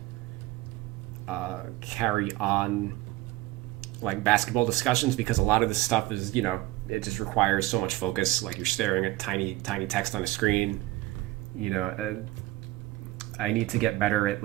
carry on like basketball discussions, because a lot of this stuff is, you know, it just requires so much focus. Like, you're staring at tiny text on a screen. You know, I need to get better at,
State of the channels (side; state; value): left; quieter; 17.5 dB